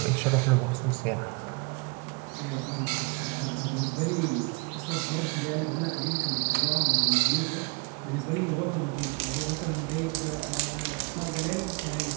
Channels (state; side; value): quieter; left; 30.4 dB